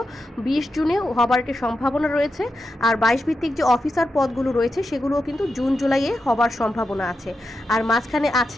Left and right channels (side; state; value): both; normal; correlation 0.88